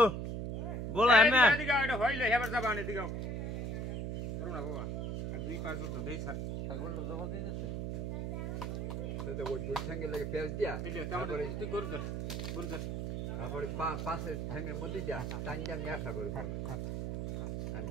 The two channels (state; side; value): noise; right; hum, 3 dB below the sound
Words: বলো এমে এদিকে এটা হইলে হেবার যাবা না এদিকে করো না বাবা আর 2-5 জন তো দেই স্যার ছাগলটা জবাব দিতেছে তাহলে ওই দুই ঠ্যাঙ্গে লাগে পেঁয়াজ দিয়া তারপরে তুই গরু ধর তারপরে পাশে ঠ্যাঙ্গের মধ্যে দিয়া টান দিয়া আমি একটা করে খাই আমি